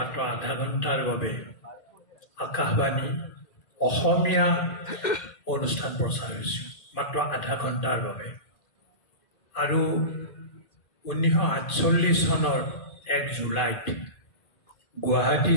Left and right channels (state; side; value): late; right; 2.5 ms